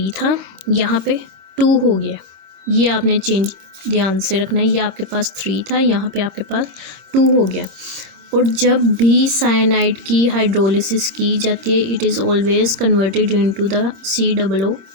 था, यहाँ पे 2 हो गया। ये आपने चेंज ध्यान से रखना है। ये आपके पास 3 था, यहाँ पे आपके पास 2 हो गया। और जब भी साइनाइड की हाइड्रोलिसिस की जाती है it is always converted into the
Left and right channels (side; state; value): left; late; 25 ms